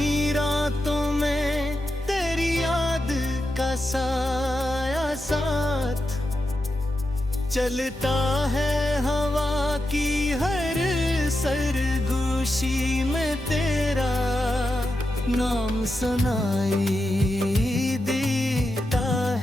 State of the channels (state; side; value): normal; both; correlation 0.88